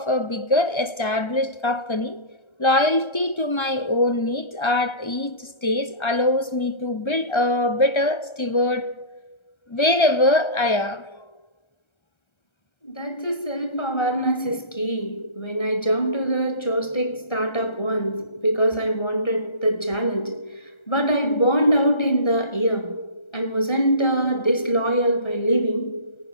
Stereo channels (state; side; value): late; right; 1.3 ms